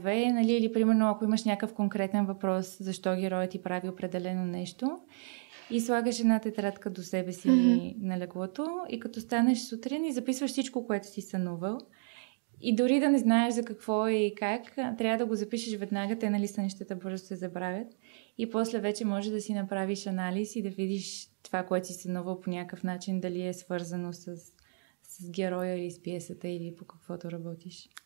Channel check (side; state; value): left; silent; digital silence